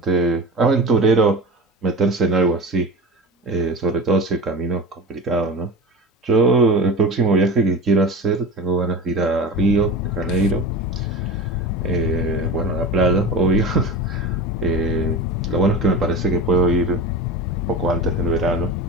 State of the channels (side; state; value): both; normal; correlation 0.30